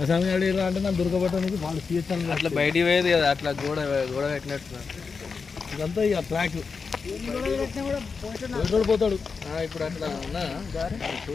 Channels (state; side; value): quieter; right; 5.1 dB